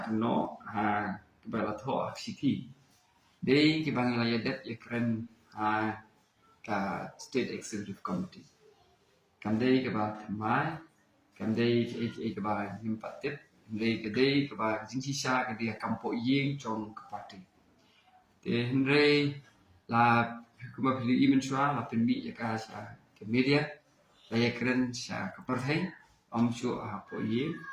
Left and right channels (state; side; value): identical; both; correlation 1.00